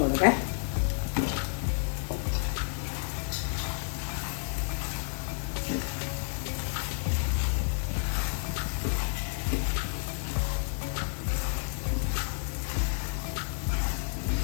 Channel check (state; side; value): silent; right; 57 dB below the other